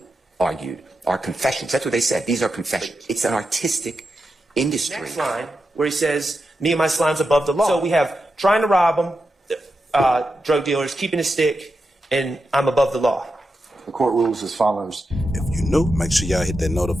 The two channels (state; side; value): normal; both; correlation 0.88